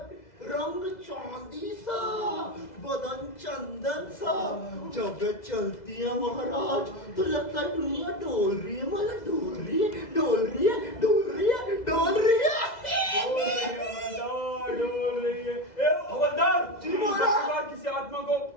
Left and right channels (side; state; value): right; late; 2.0 ms